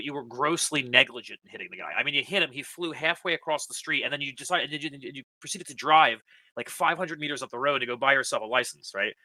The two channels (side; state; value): both; identical; correlation 1.00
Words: you were grossly negligent in hitting the guy. I mean, you hit him, he flew halfway across the street, and then you proceeded to drive like 500 meters up the road to go buy yourself a license, right?